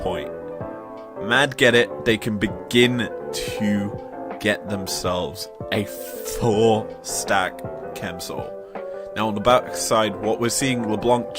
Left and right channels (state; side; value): identical; both; correlation 1.00